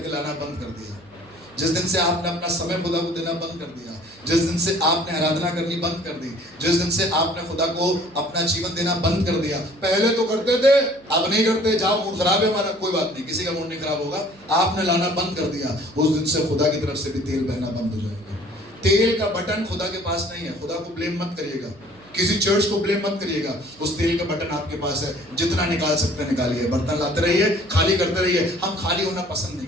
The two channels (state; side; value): noise; right; hum, 27 dB below the sound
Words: लाना बंद कर दिया, जिस दिन से आपने अपना समय खुदा को देना बंद कर दिया, जिस दिन से आपने आराधना करनी बंद कर दी, जिस दिन से आपने खुदा को अपना जीवन देना बंद कर दिया, पहले तो करते थे अब नहीं करते, जाओ मूड खराब है हमारा, कोई बात नहीं, किसी का मूड नहीं खराब होगा, आपने लाना बंद कर दिया, उस दिन से खुदा की तरफ से भी तेल बहना बंद हो जाएगा। तेल का बटन खुदा के पास नहीं है। खुदा को ब्लेम मत करिएगा, किसी चर्च को ब्लेम मत करिएगा, उस तेल का बटन आपके पास है, जितना निकाल सकते हैं निकालिए, बर्तन लाते रहिए, खाली करते रहिए। हम खाली होना पसंद नहीं